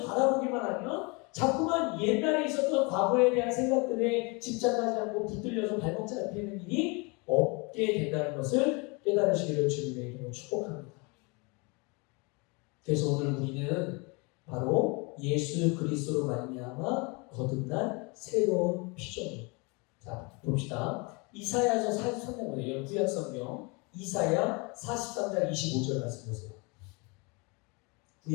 바라보기만 하면 자꾸만 옛날에 있었던 과거에 대한 생각들에 집착하지 않고 붙들려서 발목 잡히는 일이 없게 된다는 것을 깨달으시기를 주님의 이름으로 축복합니다. 그래서 오늘 우리는 바로 예수 그리스도로 말미암아 거듭난 새로운 피조물. 자, 봅시다. 이사야서 43장이에요. 구약성경 이사야 43장 25절 말씀 보세요.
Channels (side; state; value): right; quieter; 29.7 dB